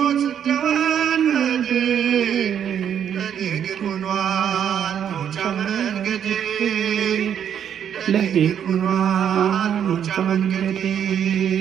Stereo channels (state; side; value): quieter; left; 8.9 dB